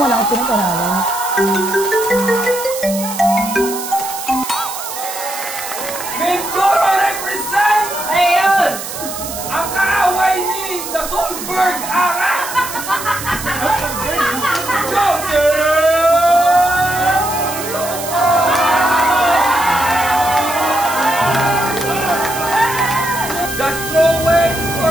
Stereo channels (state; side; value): noise; right; hiss, 8 dB below the sound